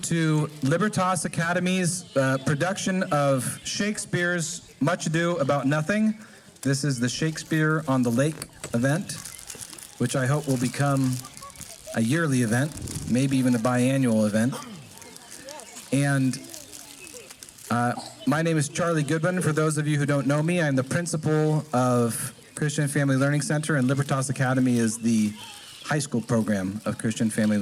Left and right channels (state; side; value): identical; both; correlation 1.00